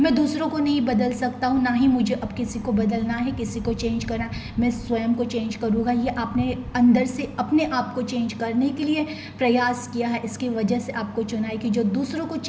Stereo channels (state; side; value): identical; both; correlation 1.00